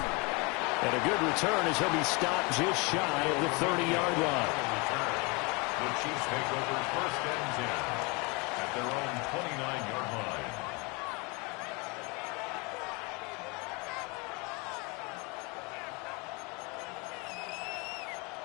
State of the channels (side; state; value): right; quieter; 29.0 dB